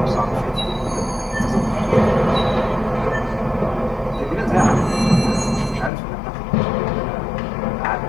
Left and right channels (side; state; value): right; drops out; at 5.9 s